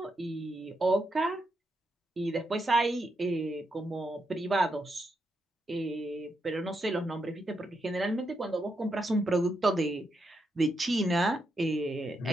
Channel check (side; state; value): both; normal; correlation 0.82